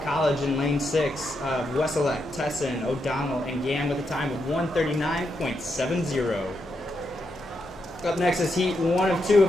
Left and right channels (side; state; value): both; normal; correlation 0.82